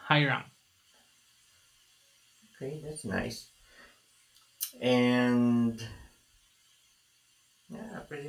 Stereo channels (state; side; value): identical; both; correlation 1.00